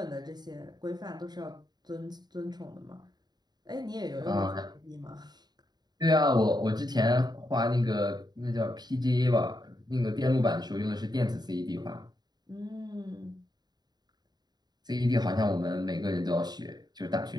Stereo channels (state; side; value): late; left; 0.20 ms